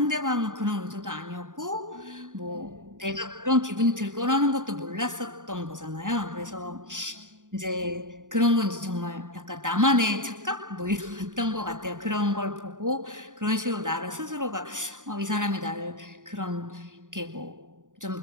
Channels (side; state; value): left; late; 0.88 ms